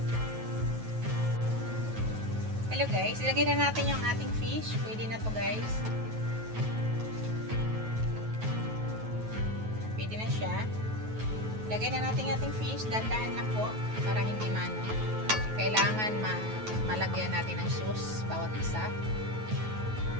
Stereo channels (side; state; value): left; late; 9.3 ms